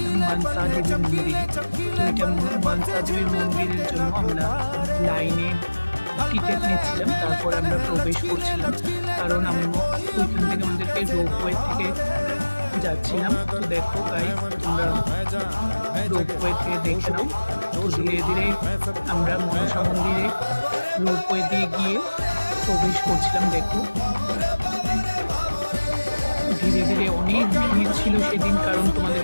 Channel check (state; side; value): inverted; both; correlation -1.00